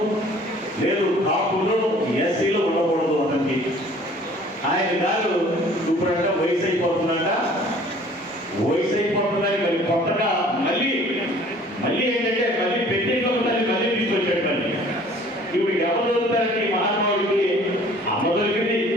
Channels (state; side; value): normal; both; correlation 0.52